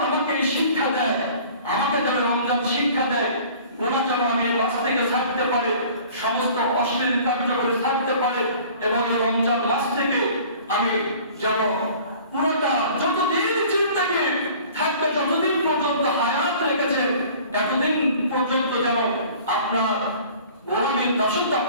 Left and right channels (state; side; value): inverted; both; correlation -0.48